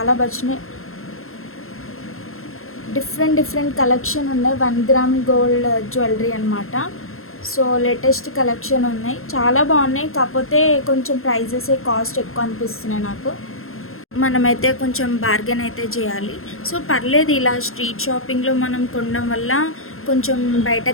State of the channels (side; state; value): right; late; 0.61 ms